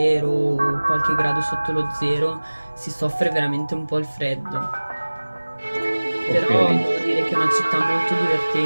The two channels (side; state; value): both; inverted; correlation -1.00